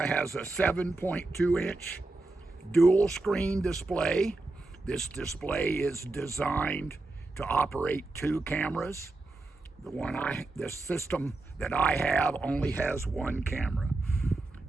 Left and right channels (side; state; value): left; quieter; 3.1 dB